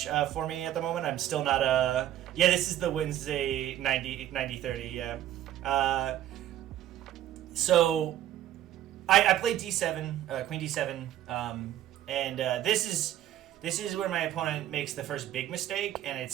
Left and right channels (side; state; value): left; quieter; 12.3 dB